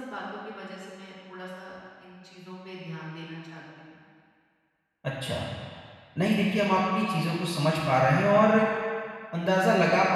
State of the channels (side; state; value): both; identical; correlation 1.00